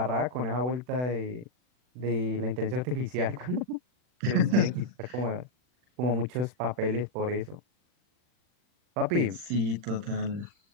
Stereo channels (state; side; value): late; left; 40 ms